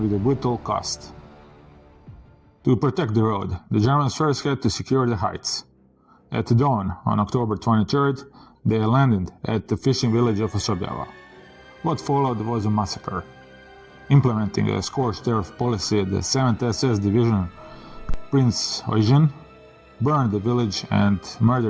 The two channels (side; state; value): both; identical; correlation 1.00